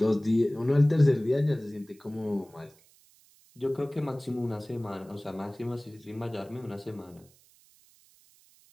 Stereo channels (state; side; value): noise; right; hiss, 29 dB below the sound